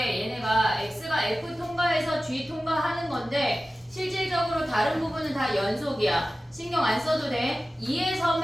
얘네가 X가 F 통과해서 G 통과하는 건데 실질적으로 다른 부분은 다 연속이야. 신경 안 써도 돼.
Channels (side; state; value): both; normal; correlation 0.96